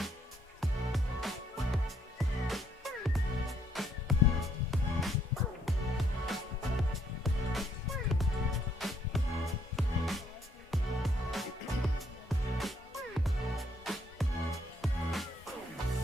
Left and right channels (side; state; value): both; normal; correlation 0.69